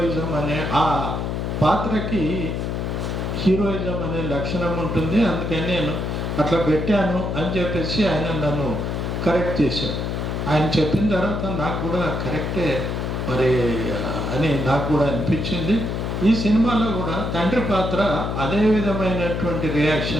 అనే ఆ పాత్రకి హీరోయిజం అనే లక్షణం ఉంటుంది. అందుకని నేను అట్లా పెట్టాను అని చెప్పేసి ఆయన నన్ను కరెక్ట్ చేశాడు. ఆయన చెప్పిన తర్వాత నాకు కూడా కరెక్టే మరి అని నాకు కూడా అనిపించింది. ఈ సినిమాలో కూడా తండ్రి పాత్ర అదే విధమైనటువంటి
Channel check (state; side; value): noise; left; hum, 2 dB below the sound